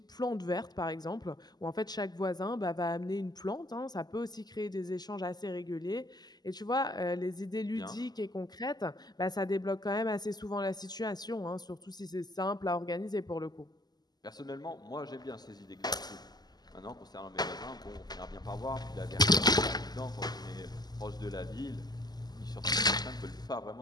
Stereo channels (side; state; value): right; late; 0.20 ms